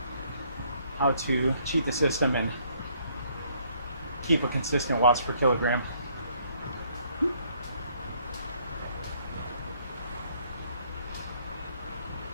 how to cheat the system and keep a consistent watts per kilogram.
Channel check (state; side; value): inverted; both; correlation -0.66